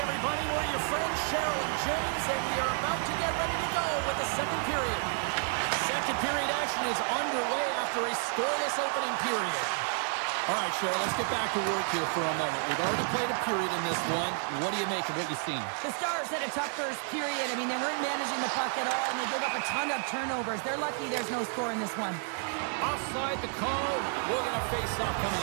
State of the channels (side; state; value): left; silent; 55 dB below the other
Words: everybody. We're your friends, Cheryl and James, and we are about to get ready to go with the second period. Second period action possession is underway after a scoreless opening period. All right, Cheryl, let's get back to work here for a moment. We've already played a period in this one. What do you make of what you've seen? The Stars had a tough first period. I mean, they weren't managing the puck at all, and they gave up a ton of turnovers. They're lucky there's no score in this one. Offside the call. We're going to face off coming